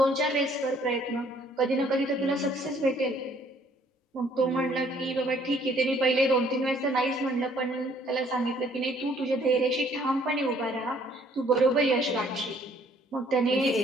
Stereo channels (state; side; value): normal; both; correlation 0.61